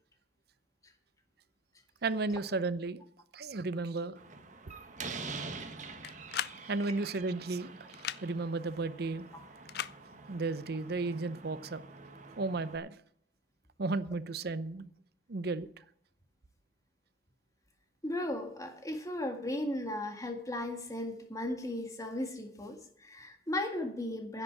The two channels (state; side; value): normal; both; correlation 0.42